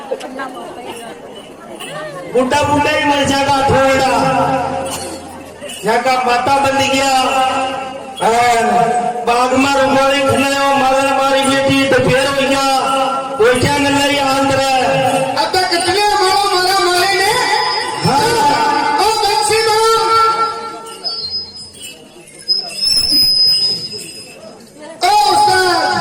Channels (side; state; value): both; identical; correlation 1.00